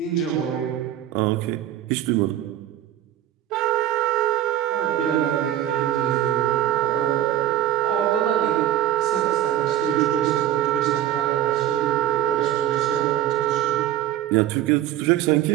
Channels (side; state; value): left; quieter; 12.5 dB